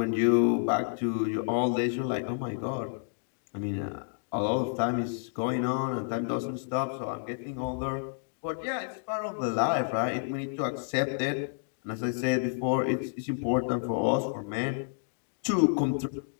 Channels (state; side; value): silent; right; digital silence